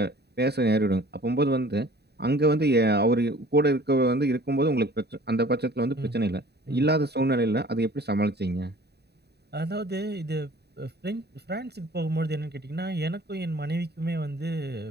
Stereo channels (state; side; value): late; left; 0.48 ms